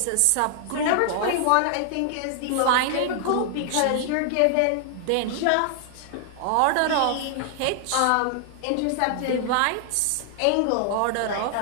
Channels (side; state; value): both; different; correlation -0.01